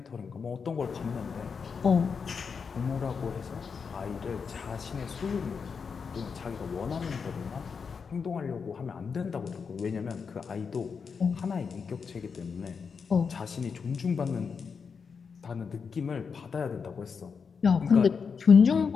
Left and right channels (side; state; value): right; quieter; 5.8 dB